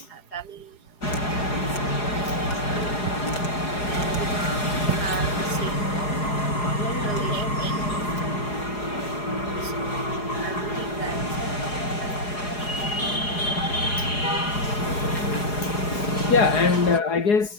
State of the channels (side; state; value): right; late; 4.8 ms